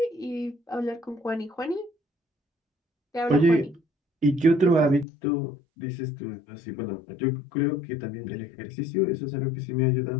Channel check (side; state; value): right; drops out; at 5.1 s